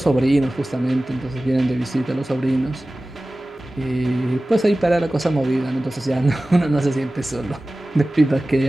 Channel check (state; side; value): normal; both; correlation 0.97